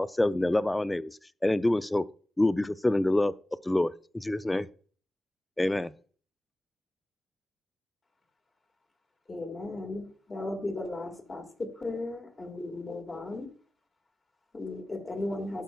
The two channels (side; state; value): both; normal; correlation 0.98